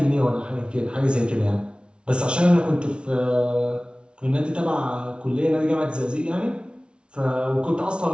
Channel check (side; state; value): left; late; 0.057 ms